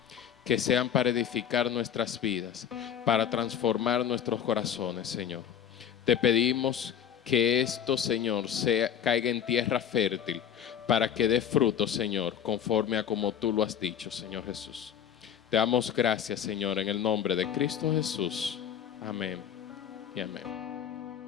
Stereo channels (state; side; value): quieter; right; 8.9 dB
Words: Que sean para edificar nuestras vidas, para transformar nuestros corazones, Señor. Te pedimos que esto, Señor, caiga en tierra fértil, para que dé fruto, Señor, conforme a como tú lo has dicho, Señor Jesús. Te damos gracias, Señor, en el nombre de Cristo Jesús. Amén y amén.